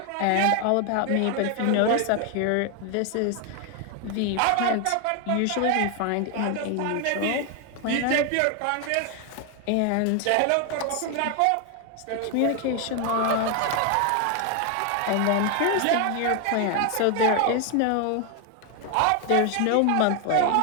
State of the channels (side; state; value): both; different; correlation 0.01